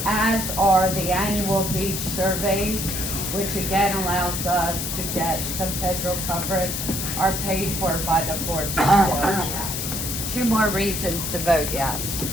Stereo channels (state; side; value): noise; left; hiss, 3 dB below the sound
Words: As are the annual beach surveys, which again allows us to get some federal coverage, are paid for by the 4B sales tax. 2 more reasons to vote yes.